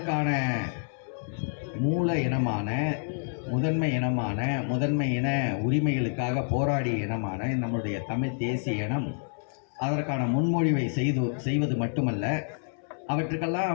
மூல இனமான முதன்மை இன உரிமைகளுக்காக போராடிய இனமான நம்முடைய தமிழ் தேசிய இனம் அதற்கான முன்மொழிவை செய்வது மட்டுமல்ல,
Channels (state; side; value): silent; right; 59 dB below the other